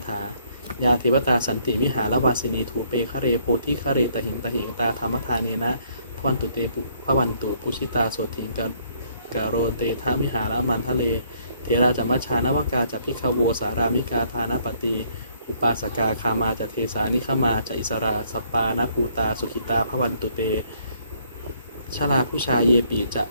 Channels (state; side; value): inverted; both; correlation -0.65